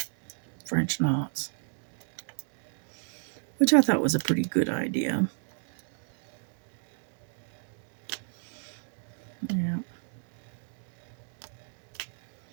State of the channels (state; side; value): silent; left; digital silence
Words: French knots, which I thought was a pretty good idea. Yeah.